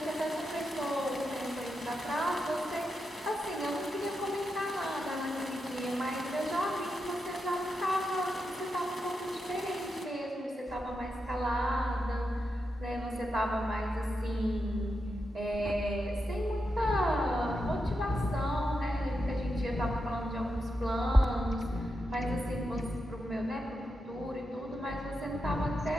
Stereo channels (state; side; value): normal; both; correlation 0.87